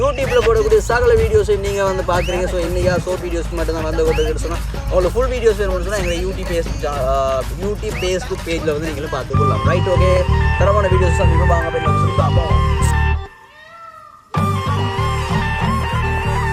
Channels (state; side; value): identical; both; correlation 1.00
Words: போடக்கூடிய சகல வீடியோஸையும் நீங்கள் வந்து பார்க்குறீங்க. ஸோ இன்றைக்கா ஷோர்ட் வீடியோஸ்க்கு மட்டும் தான் வந்து கொண்டு சொன்னால் உங்களுக்கு ஃபுல் வீடியோஸ் வேணும்னு சொன்னால் எங்களை யூடியூப் ஃபேஸ்புக் பேஜில் வந்து நீங்களும் பார்த்துக்கொள்ளலாம். Right, okay. தரமான வீடியோஸ் தான் நீங்கள் வாங்க போய் சொல்லி பார்ப்போம்.